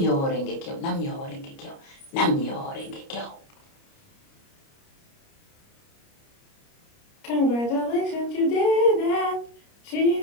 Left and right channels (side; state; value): right; late; 29 ms